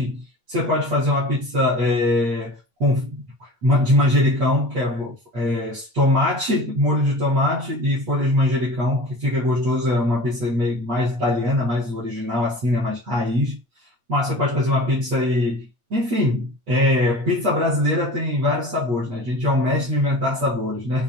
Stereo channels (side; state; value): left; late; 8.6 ms